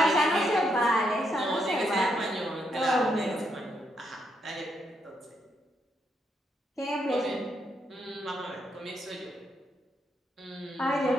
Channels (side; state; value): both; normal; correlation 0.78